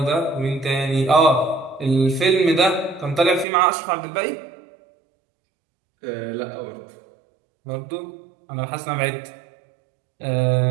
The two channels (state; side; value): drops out; left; at 3.5 s